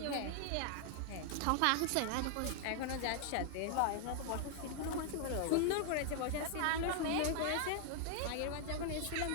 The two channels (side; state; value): both; different; correlation 0.00